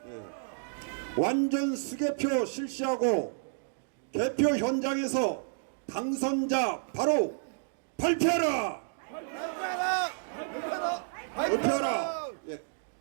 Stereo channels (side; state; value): left; silent; digital silence